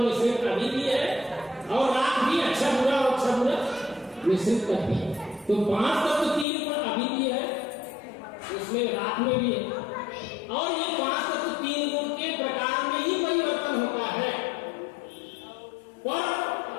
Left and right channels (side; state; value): right; drops out; at 6.5 s